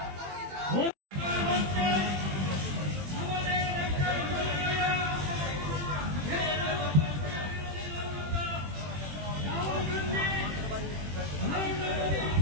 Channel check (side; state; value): left; late; 21 ms